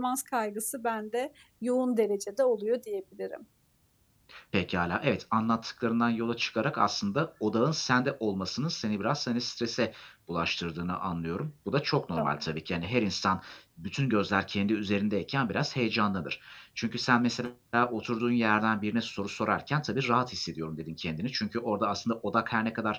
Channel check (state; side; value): identical; both; correlation 1.00